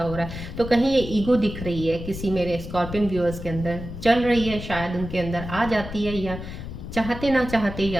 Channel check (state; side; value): noise; left; rumble, 9 dB below the sound